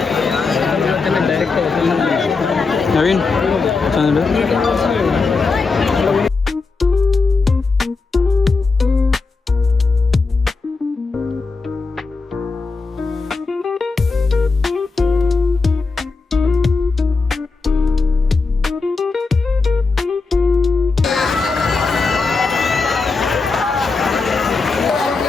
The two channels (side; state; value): right; quieter; 4.2 dB